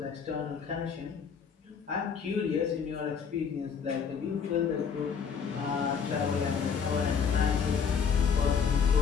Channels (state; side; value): quieter; right; 6.5 dB